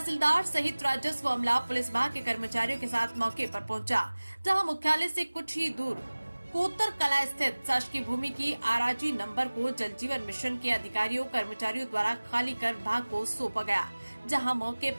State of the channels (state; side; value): inverted; both; correlation -1.00